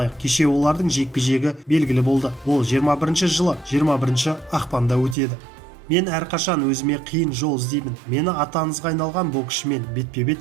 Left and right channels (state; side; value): drops out; left; at 5.2 s